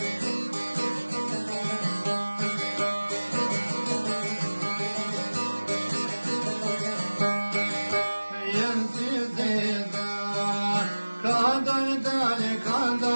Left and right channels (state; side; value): inverted; both; correlation -1.00